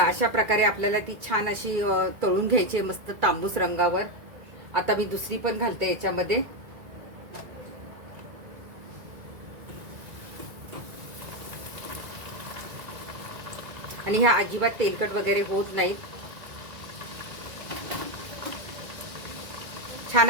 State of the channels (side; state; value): left; late; 2.0 ms